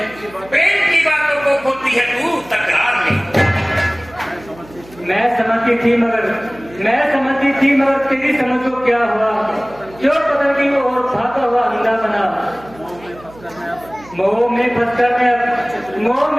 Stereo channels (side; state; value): right; noise; hum, 22 dB below the sound